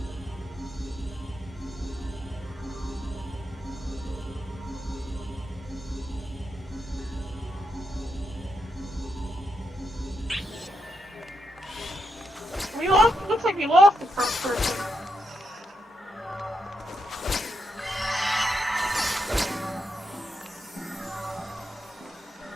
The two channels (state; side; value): normal; both; correlation 0.83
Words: We lost. Looks like we lost the first person.